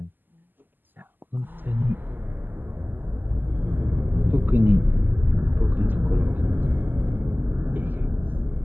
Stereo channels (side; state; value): left; late; 0.089 ms